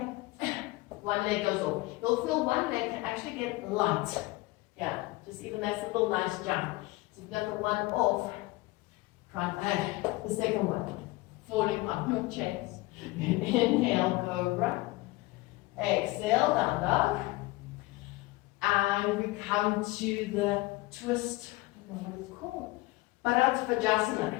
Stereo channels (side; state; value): right; quieter; 20.9 dB